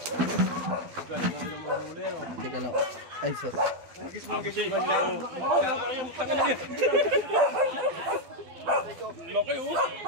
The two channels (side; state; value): left; late; 12 ms